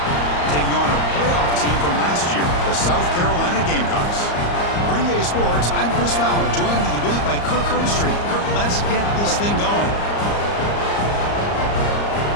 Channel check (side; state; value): right; late; 34 ms